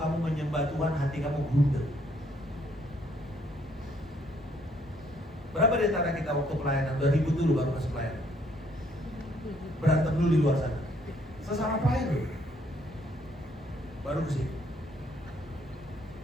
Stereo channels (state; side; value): normal; both; correlation 0.68